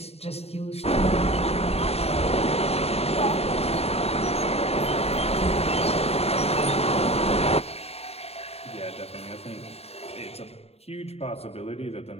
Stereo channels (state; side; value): late; right; 0.30 ms